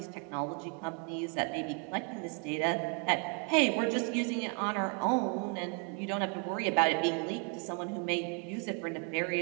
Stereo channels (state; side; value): quieter; left; 37.6 dB